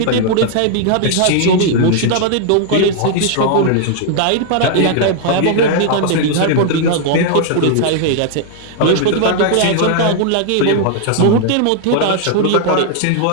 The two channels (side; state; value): both; different; correlation 0.00